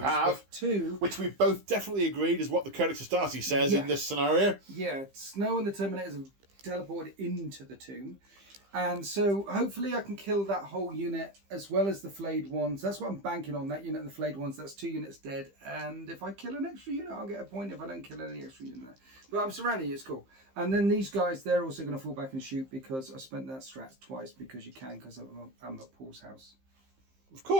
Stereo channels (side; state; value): left; late; 15 ms